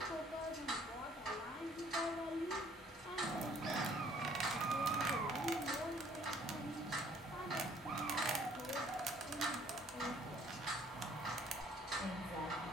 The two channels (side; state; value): both; normal; correlation 0.59